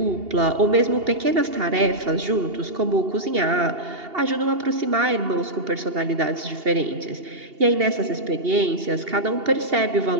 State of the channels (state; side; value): late; left; 2.8 ms